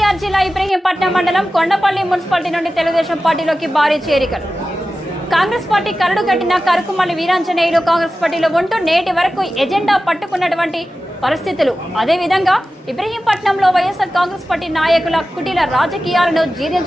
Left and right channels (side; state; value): both; normal; correlation 0.94